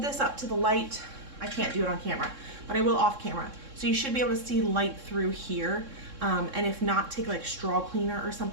this up to the light. I can't do it on camera, but I will off camera. So you should be able to see light through here. And if not, take like straw cleaner or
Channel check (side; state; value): left; late; 3.6 ms